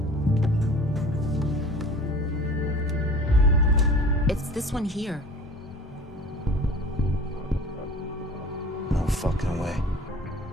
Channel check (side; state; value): both; normal; correlation 0.43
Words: It's this one here. No fucking way.